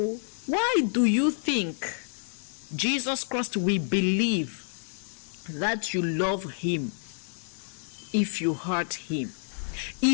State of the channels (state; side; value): silent; right; digital silence